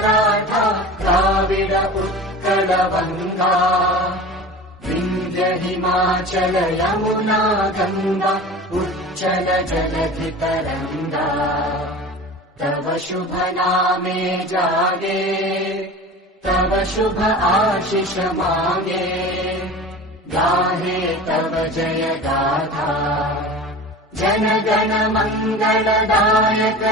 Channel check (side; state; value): both; normal; correlation 0.35